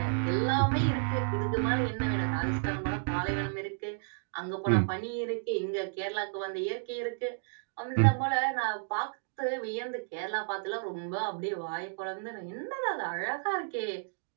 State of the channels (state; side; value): silent; left; digital silence